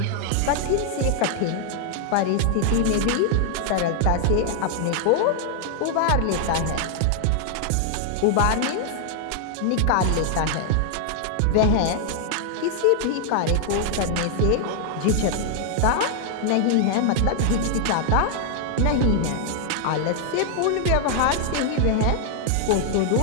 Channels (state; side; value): different; both; correlation 0.00